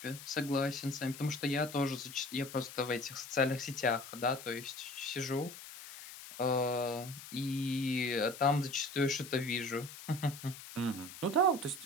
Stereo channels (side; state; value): left; noise; hiss, 13 dB below the sound